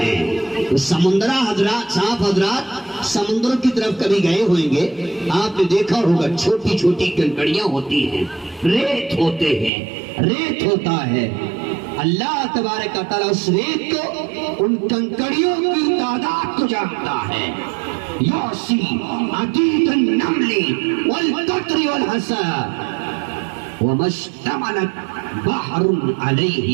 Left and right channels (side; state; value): left; drops out; at 9.7 s